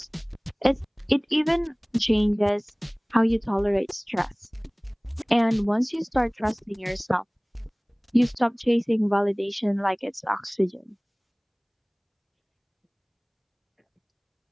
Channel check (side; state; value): both; identical; correlation 1.00